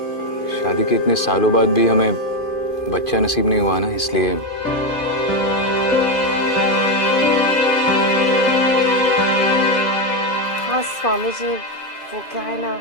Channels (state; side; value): late; right; 2.5 ms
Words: शादी के इतने सालों बाद भी हमें बच्चा नसीब नहीं हुआ ना, इसलिए। हाँ स्वामी जी, वो क्या है ना,